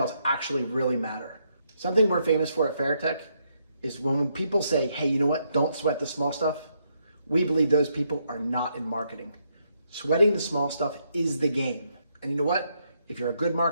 actually really matter. Something we're famous for at Veritech is when people say, hey, you know what? Don't sweat the small stuff. We believe those people are not in marketing. Sweating the small stuff is the game. And you know what? If you're a good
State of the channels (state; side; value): inverted; both; correlation -0.76